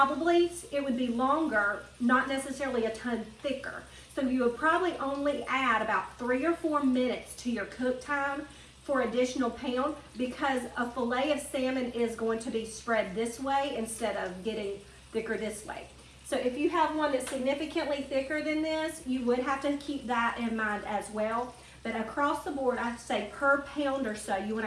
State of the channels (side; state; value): both; identical; correlation 1.00